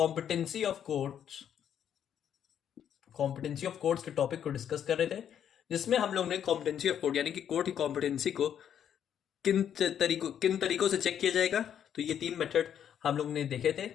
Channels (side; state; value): right; quieter; 9.2 dB